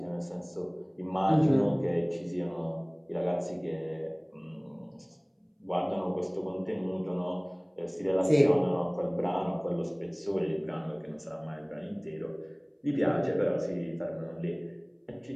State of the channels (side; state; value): both; identical; correlation 1.00